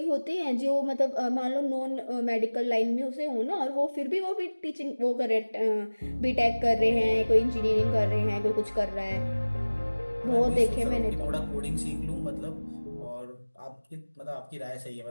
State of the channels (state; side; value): inverted; both; correlation -1.00